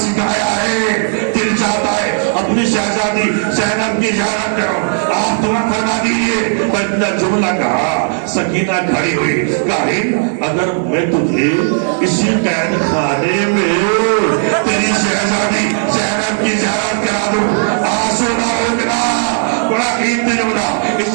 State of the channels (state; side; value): silent; left; 63 dB below the other